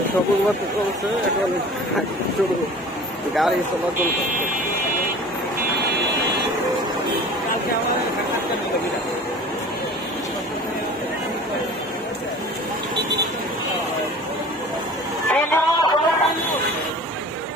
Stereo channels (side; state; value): right; noise; hum, 25 dB below the sound